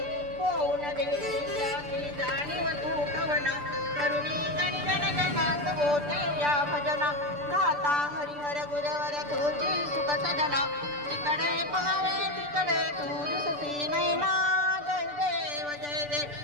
होऊन देवी जाती जाणीव तू कवना करुणी गण गण गणात होते या भजना गाता हरिहर गुरवर तुझी सुख सजना तिकडे पहावे तिकडे तू दिसती नैना जय देव जय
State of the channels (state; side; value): late; left; 6.8 ms